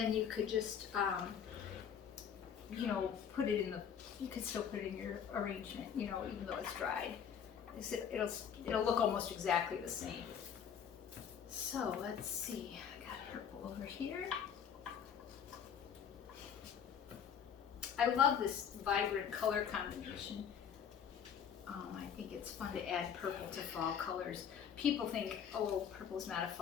you could just, you know, put it in the, you could still put it in your arrangement, you know, even though it's dried. It'll look almost exactly the same. So let's see, I got purple over here. I love this vibrant color combination. I think it's fun to add purple to fall colors. People think, oh, purple's not a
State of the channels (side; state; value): right; quieter; 7.9 dB